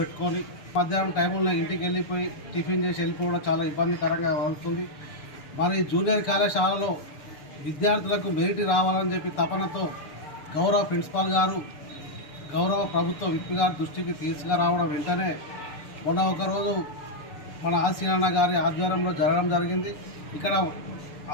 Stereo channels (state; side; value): late; right; 6.8 ms